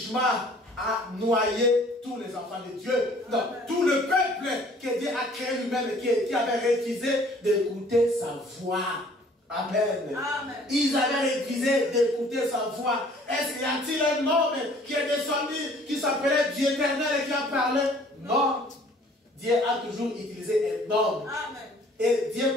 a noyé tous les enfants de Dieu. Non, tout le peuple que Dieu a créé lui-même et qui avait refusé d'écouter sa voix. Amen. Amen. Ils avaient refusé d'écouter sa voix. Est-ce qu'il y a-t-il un homme qui est descendu, qui s'appelait Dieu éternel et qui a parlé? Non. Dieu a toujours utilisé un homme. Amen. Et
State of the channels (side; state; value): both; normal; correlation 0.55